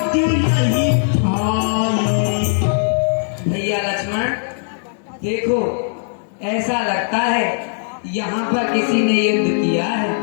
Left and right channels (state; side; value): silent; right; 67 dB below the other